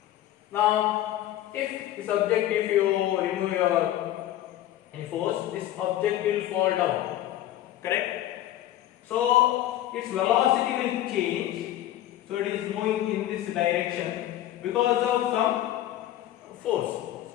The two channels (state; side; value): quieter; right; 13.3 dB